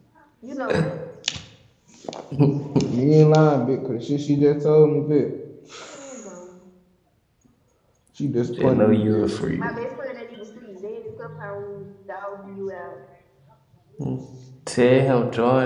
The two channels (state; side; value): identical; both; correlation 1.00